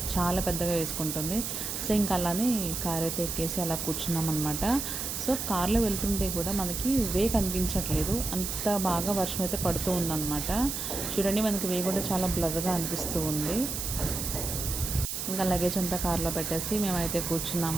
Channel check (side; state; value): right; noise; hiss, 4 dB below the sound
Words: చాలా పెద్దగా వేసుకుంటుంది. సో ఇంకా అలానే కార్ అయితే ఎక్కేసి అలా కూర్చున్నాం అనమాట. సో కార్లో వెళ్తుంటే కూడా మనకి వే కనిపించట్లేదు, అంత బాగా వర్షం అయితే పడుతూ ఉందన్నమాట. చూడండి, మనకి వే కూడా చాలా బ్లర్గా అనిపిస్తూ ఉంది. ఇంకా లగేజ్ అంతా కార్లో పెట్టేసి మేమైతే